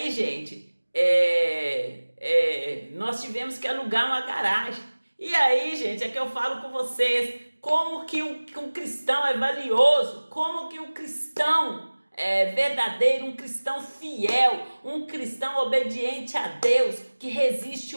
gente, nós tivemos que alugar uma garagem. E aí, gente, é que eu falo com vocês como que um cristão é valioso, como que um cristão verdadeiro, um cristão fiel, um cristão obediente a Deus, que resiste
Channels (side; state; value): both; inverted; correlation -1.00